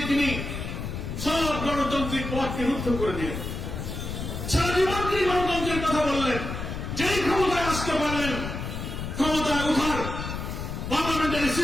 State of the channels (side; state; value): left; noise; rumble, 6 dB below the sound